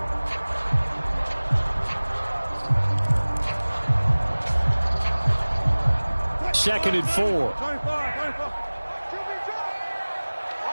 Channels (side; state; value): both; inverted; correlation -1.00